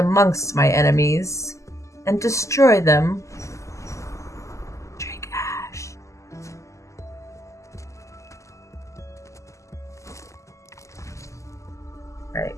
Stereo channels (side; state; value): right; late; 0.15 ms